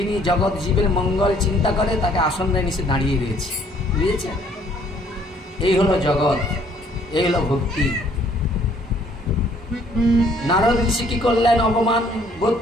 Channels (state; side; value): normal; both; correlation 0.62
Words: জগৎ জীবের মঙ্গল চিন্তা করে, তাকে আসন নিচে দাঁড়িয়ে রয়েছে, বুঝেছেন? এই হলো জগৎ, এই হলো ভক্তি। নারদ ঋষি কি করলেন, অপমান বোধ